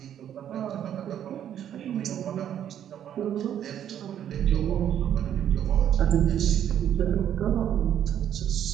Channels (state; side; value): quieter; left; 10.1 dB